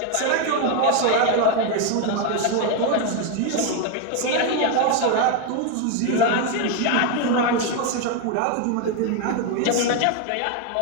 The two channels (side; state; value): both; different; correlation 0.01